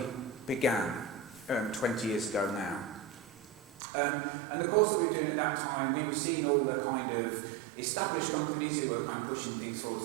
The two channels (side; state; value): left; drops out; at 3.8 s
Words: began 20 years ago now. And the course that we were doing at that time, we were seeing all the kind of established companies who were kind of pushing things forwards,